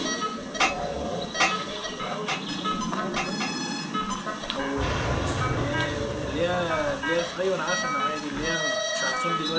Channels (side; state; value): both; identical; correlation 1.00